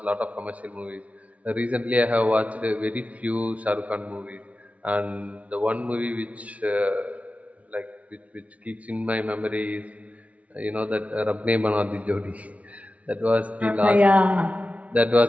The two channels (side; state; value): left; late; 0.067 ms